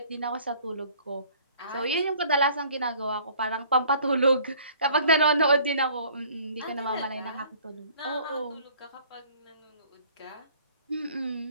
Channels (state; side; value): inverted; both; correlation -0.54